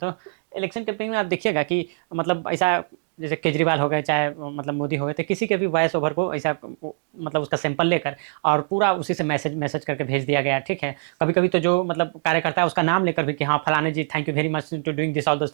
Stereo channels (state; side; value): silent; left; digital silence